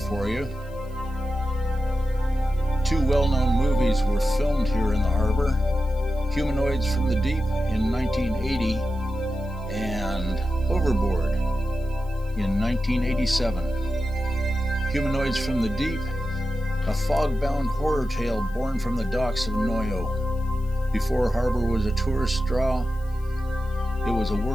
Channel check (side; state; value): left; noise; hiss, 28 dB below the sound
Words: you. Two well-known movies were filmed here in the harbor. Humanoids from the Deep in 1980 and Overboard in 1987. Humanoids from the Deep, a fog-bound horror tale born from the docks of Noyo. Before harbor was a tourist draw, it was a